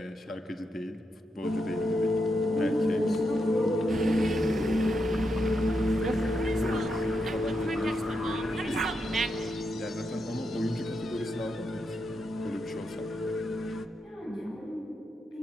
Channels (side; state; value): both; normal; correlation 0.83